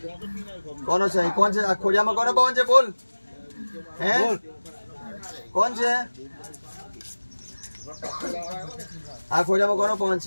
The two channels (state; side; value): inverted; both; correlation -1.00